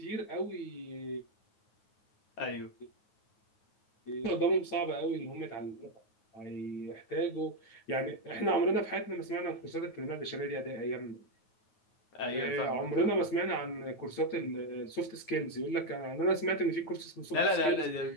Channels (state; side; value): late; right; 9.4 ms